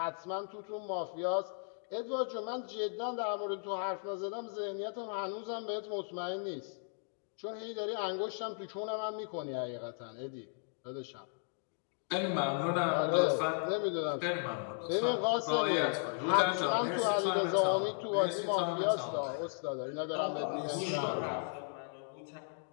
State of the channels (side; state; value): right; silent; 54 dB below the other